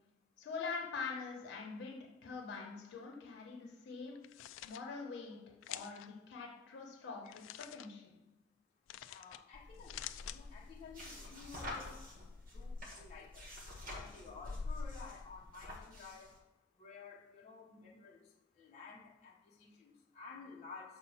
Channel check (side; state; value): right; quieter; 4.2 dB